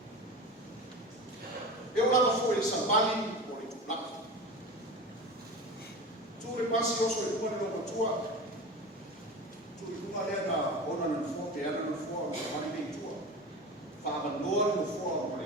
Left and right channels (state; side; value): normal; both; correlation 0.30